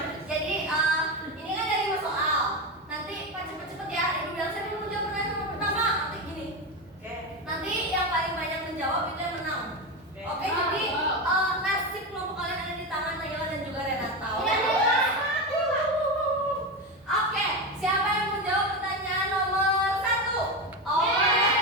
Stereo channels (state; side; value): normal; both; correlation 0.17